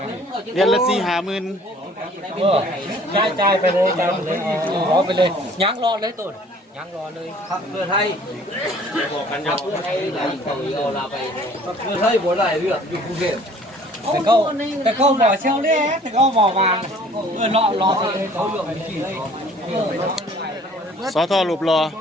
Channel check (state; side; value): normal; both; correlation 0.54